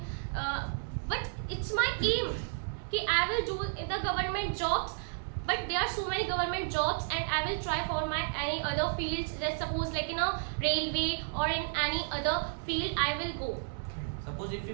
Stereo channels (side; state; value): left; silent; 56 dB below the other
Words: but it's my aim कि I will do in the government jobs. But there are so many government jobs, and I will try for my any other fields. Let's suppose like in a railway or in any other field, I will go. Suppose if you